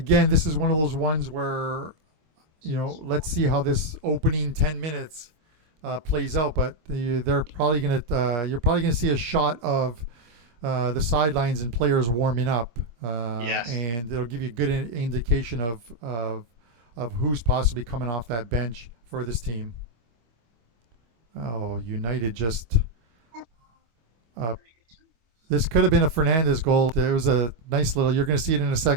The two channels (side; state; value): left; late; 25 ms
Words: this is one of those ones where let's see how this opening 10 minutes plays out. But you're probably gonna see a shot of the sidelines and players warming up, and it'll give you a good indication of who's possibly coming off that bench for this team. Oh, United just. This could have been a Fernandez goal. It was a nice little. You're going to see it in a